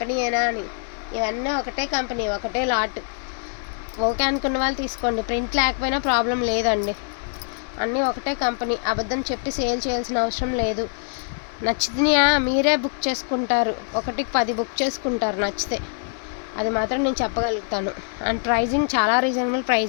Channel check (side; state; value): right; silent; 61 dB below the other